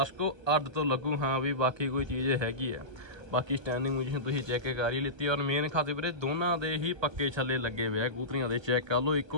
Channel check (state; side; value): late; left; 1.3 ms